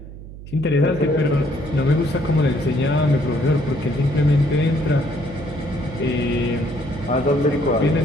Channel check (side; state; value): right; noise; hum, 14 dB below the sound